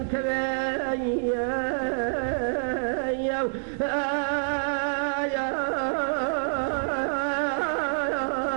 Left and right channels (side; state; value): left; silent; 60 dB below the other